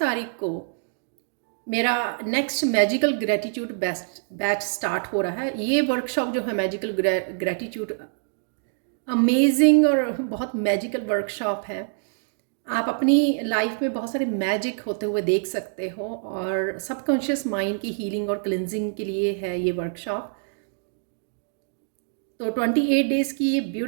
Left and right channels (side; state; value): left; silent; digital silence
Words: को मेरा next magical gratitude best batch start हो रहा है। ये वर्कशॉप जो है मैजिकल ग्रेटिट्यूड, अमेजिंग और बहुत मैजिकल वर्कशॉप है। आप अपनी लाइफ में बहुत सारे मैजिक होते हुए देख सकते हो और सबकॉन्शियस माइंड की हीलिंग और क्लिनजिंग के लिए है ये वर्कशॉप। तो 28 डेज़ की ये